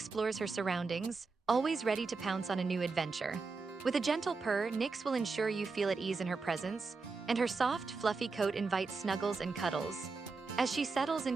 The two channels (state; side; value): quieter; left; 4.3 dB